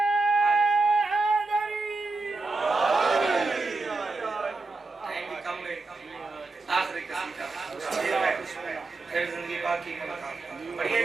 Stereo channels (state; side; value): quieter; left; 3.5 dB